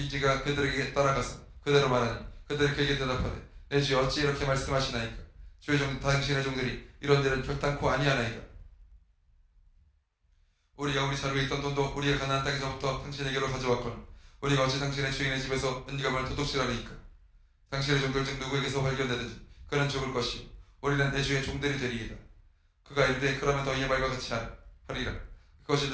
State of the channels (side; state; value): both; identical; correlation 1.00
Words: 그들에게 따라가서 그대로 말하니 그들이 그에게 대답하되 내 주여 어찌 이렇게 말씀하시나이까. 주의 당신의 종들이 이런 일은 결단코 아니하나이다. 우리가 우리 자루에 있던 돈도 우리가 가나안 땅에서부터 당신에게로 가져왔거늘 우리가 어찌 당신의 주인의 집에서 은감을 도둑질하리이까. 당신의 종들 중 누구에게서 발견되든지 그는 죽을 것이요 우리는 내 주의 종들이 되리이다. 그가 이르되 그러면 너희의 말과 같이 하리라. 그것이